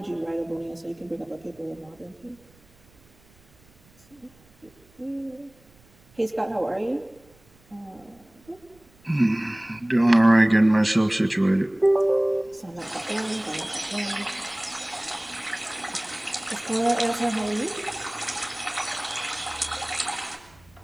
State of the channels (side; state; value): right; noise; rumble, 30 dB below the sound